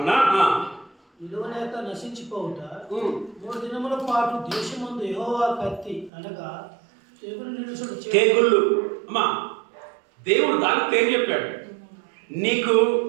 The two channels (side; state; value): left; drops out; at 6.1 s